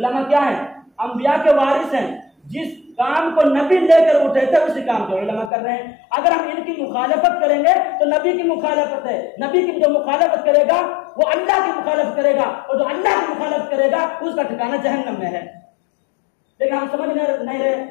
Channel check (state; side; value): drops out; right; at 5.5 s